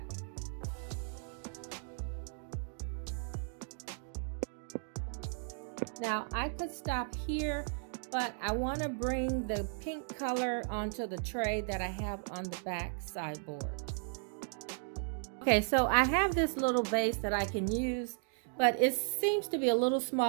Now I could stop here, but I want to bring the pink color onto the tray that I have on the back sideboard. Okay, so I have this little vase that I can use, but it seems to be a little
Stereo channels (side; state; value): left; silent; 54 dB below the other